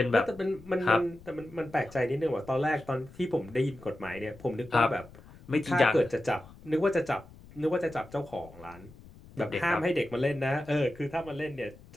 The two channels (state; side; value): noise; left; rumble, 21 dB below the sound